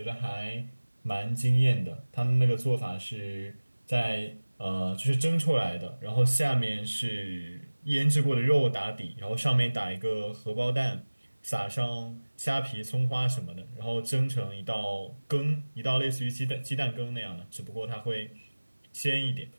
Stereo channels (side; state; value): both; inverted; correlation -1.00